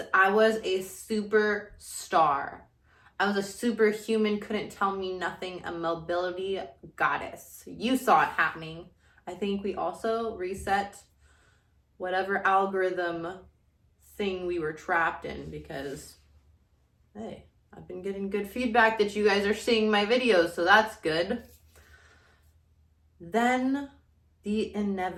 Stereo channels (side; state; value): both; identical; correlation 1.00